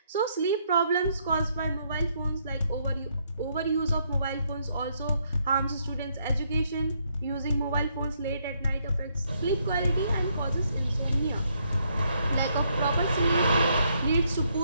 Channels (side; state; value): both; inverted; correlation -0.73